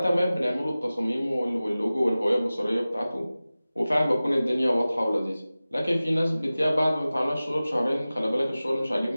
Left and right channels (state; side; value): inverted; both; correlation -0.97